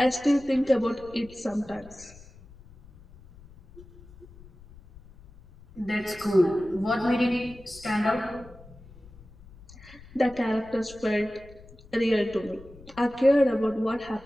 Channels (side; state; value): left; noise; rumble, 22 dB below the sound